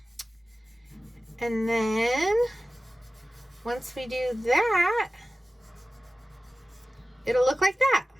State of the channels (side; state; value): both; normal; correlation 0.96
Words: and then once we do that, it'll look like that.